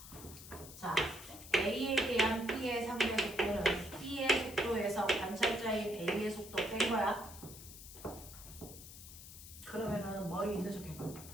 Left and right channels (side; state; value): left; noise; hiss, 15 dB below the sound